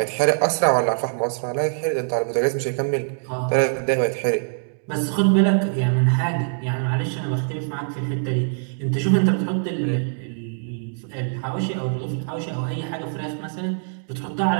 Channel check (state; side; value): silent; left; digital silence